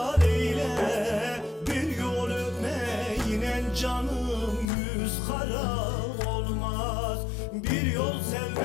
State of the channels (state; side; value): drops out; right; at 4.7 s